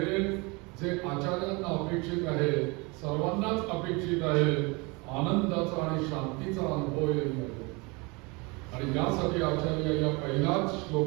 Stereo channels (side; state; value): left; quieter; 27.5 dB